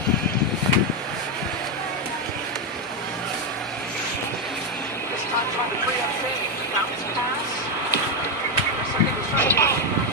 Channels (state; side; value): normal; both; correlation 0.06